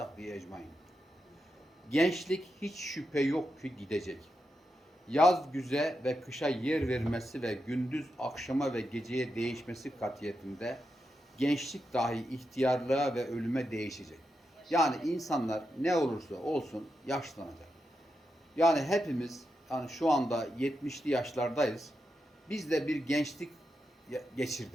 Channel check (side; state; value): both; normal; correlation 0.87